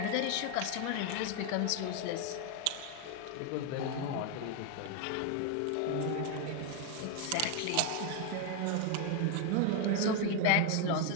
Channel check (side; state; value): both; different; correlation 0.01